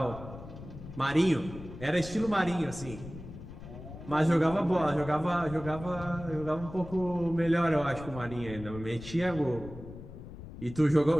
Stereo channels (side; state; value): left; noise; rumble, 13 dB below the sound